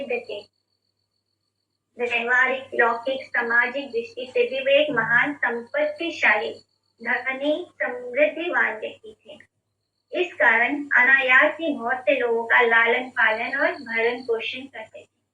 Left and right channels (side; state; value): both; identical; correlation 1.00